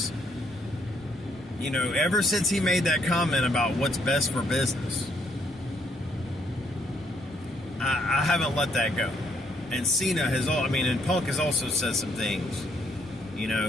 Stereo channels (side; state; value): both; normal; correlation 0.70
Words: you know, ever since he made that comment about what's best for business, I haven't let that go. And Cena has and Punk has also said some things, you